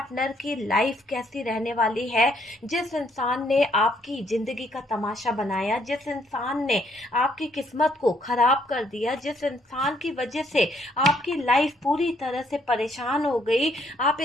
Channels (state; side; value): normal; both; correlation 0.69